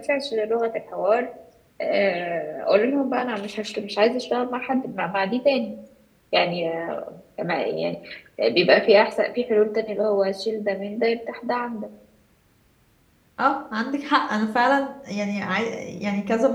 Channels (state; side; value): identical; both; correlation 1.00